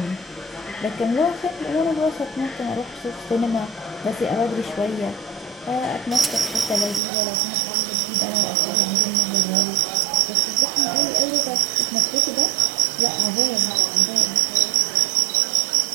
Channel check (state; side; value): drops out; left; at 7.0 s